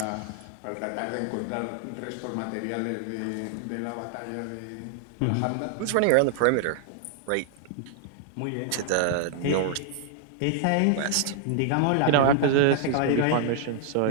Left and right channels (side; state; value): both; different; correlation 0.00